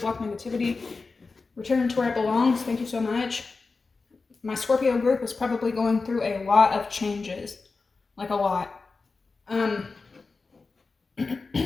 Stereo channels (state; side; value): quieter; right; 4.1 dB